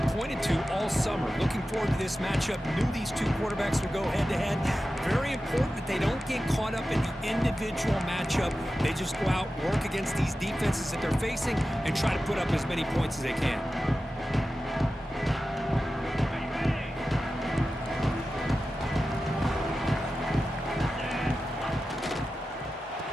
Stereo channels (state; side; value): normal; both; correlation 0.93